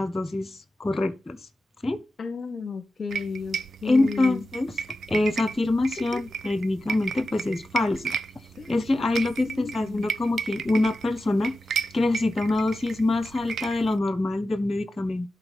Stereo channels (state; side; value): normal; both; correlation 0.92